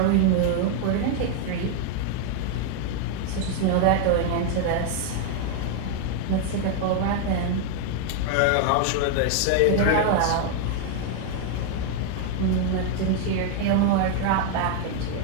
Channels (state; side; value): different; both; correlation 0.00